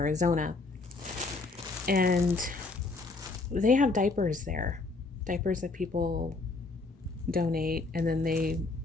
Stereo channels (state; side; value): quieter; right; 3.6 dB